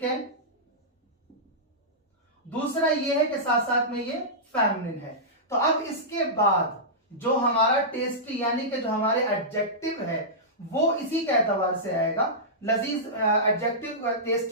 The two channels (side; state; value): both; normal; correlation -0.15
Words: है। दूसरा ये है कि साथ साथ में ये फेमिनिन है। तो अब इसके बाद जो हमारा टेस्टी यानी कि जो हमारे एडजेक्टिव है वो इसी के एतबार से आएगा। लजीज एडजेक्टिव